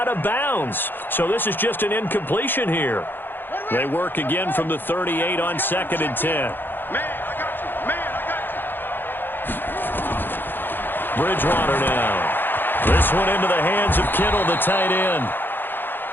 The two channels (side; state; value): right; late; 0.097 ms